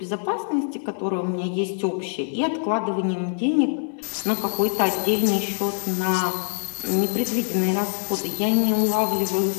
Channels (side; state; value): right; silent; digital silence